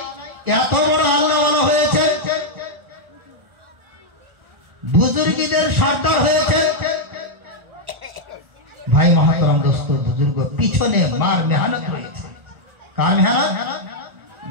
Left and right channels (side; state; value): left; late; 1.4 ms